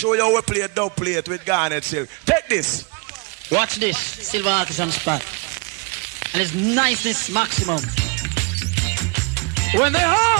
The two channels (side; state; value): left; quieter; 31.4 dB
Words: you how we play a dub plate with garnet silk. Take this. Watch this. Silver Artisan Spot. And it's niceness maximum. When the